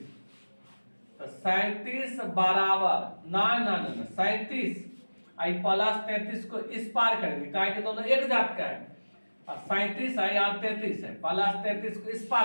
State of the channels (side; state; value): both; inverted; correlation -1.00